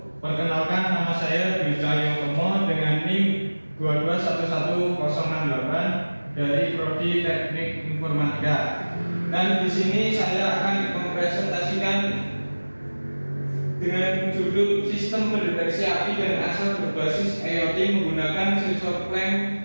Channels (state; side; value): inverted; both; correlation -1.00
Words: Perkenalkan, nama saya Dwi Cahyotomo dengan NIM 2211068 dari Prodi Teknik Informatika. Dan di sini saya akan mempresentasikan dengan judul Sistem Pendeteksi Api dan Asap Berbasis IoT menggunakan sensor clamp